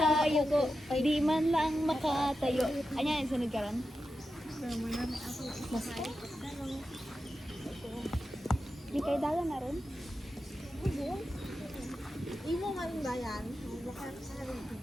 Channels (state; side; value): normal; both; correlation 0.90